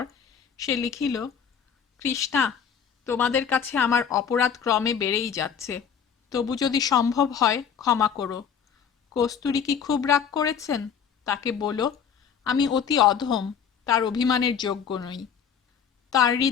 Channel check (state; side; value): quieter; right; 7.4 dB